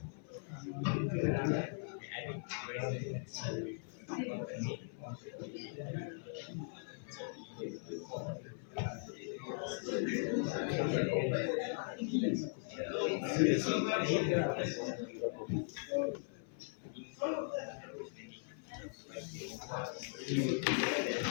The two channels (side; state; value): right; silent; 52 dB below the other